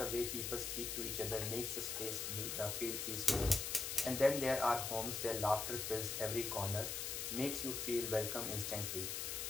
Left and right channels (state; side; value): noise; left; hiss, 3 dB below the sound